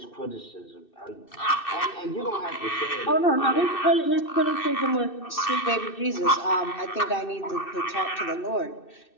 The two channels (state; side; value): late; right; 2.6 ms